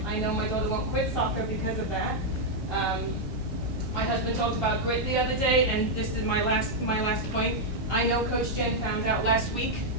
know my daughter won't quit soccer because of that. My husband talked about grit the other day, and this is my last point. I know Coach Jen found out last week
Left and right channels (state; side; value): normal; both; correlation -0.02